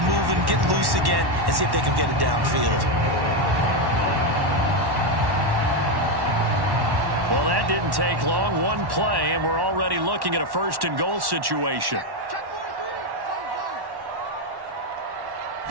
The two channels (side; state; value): left; late; 1.1 ms